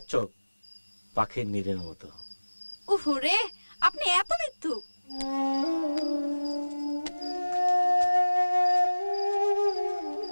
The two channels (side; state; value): both; inverted; correlation -1.00